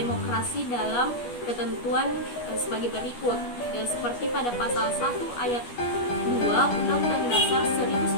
dalam ketentuan sebagai berikut, seperti pada pasal 1 ayat 2 Undang-Undang Dasar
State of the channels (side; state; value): right; late; 12 ms